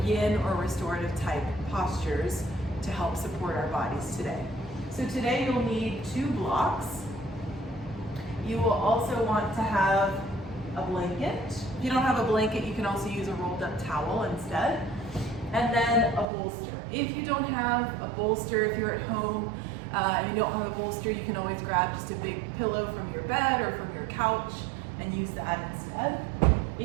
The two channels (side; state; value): left; drops out; at 16.2 s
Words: yin or restorative type postures to help support our bodies today. So today you'll need 2 blocks. You will also want to have a blanket. If you don't have a blanket, you can also use a rolled up towel instead. And then a bolster. If you don't have a bolster, if you're at home and you don't have a bolster, you can always grab just a big pillow from your bed or from your couch and use that instead.